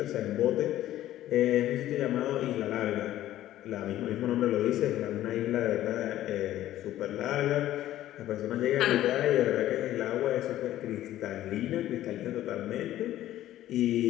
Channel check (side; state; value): right; quieter; 13.6 dB